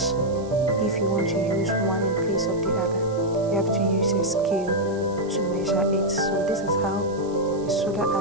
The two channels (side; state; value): right; noise; hiss, 24 dB below the sound